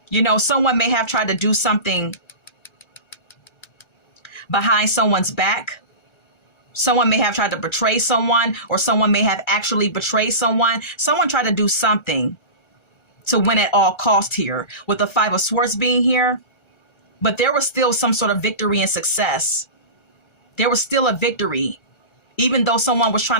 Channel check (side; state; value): right; late; 1.3 ms